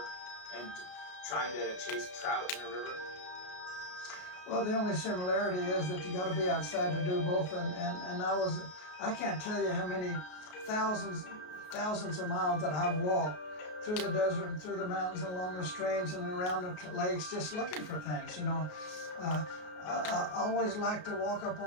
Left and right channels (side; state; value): right; late; 33 ms